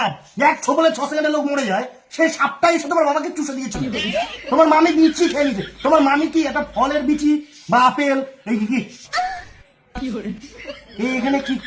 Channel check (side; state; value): both; identical; correlation 1.00